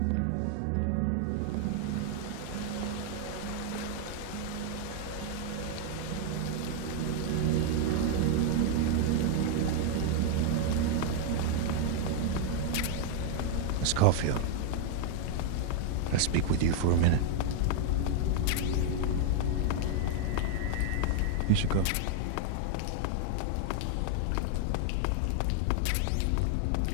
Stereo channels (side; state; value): both; different; correlation 0.00